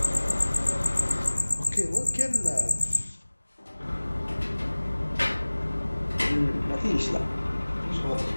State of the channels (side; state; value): both; inverted; correlation -1.00